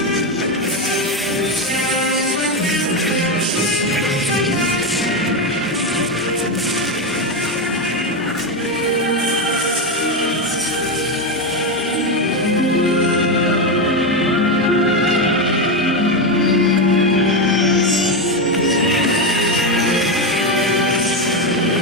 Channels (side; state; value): both; normal; correlation 0.11